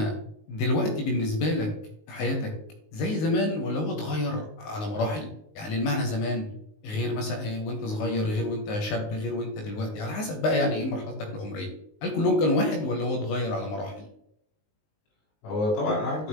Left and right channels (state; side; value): late; right; 19 ms